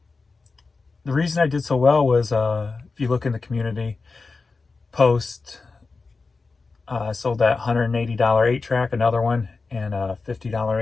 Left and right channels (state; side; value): quieter; right; 4.1 dB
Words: reason I did so well was, if you look in the community post, I sold that $180 8-track, another one, and a $50